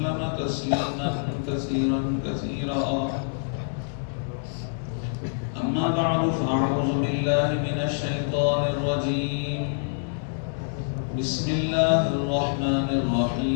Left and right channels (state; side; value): silent; right; digital silence